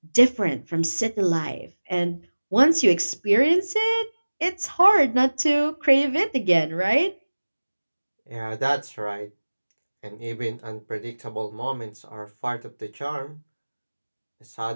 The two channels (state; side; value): inverted; both; correlation -1.00